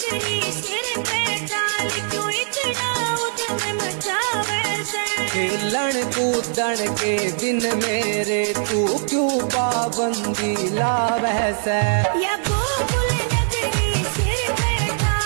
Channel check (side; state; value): left; silent; digital silence